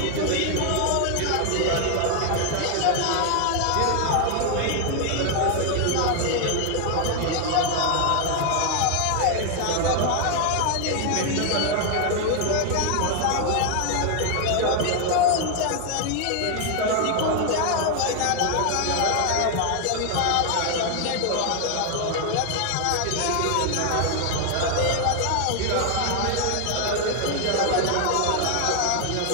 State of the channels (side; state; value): both; different; correlation 0.00